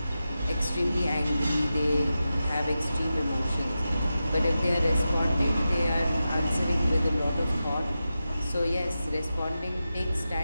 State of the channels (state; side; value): inverted; both; correlation -0.92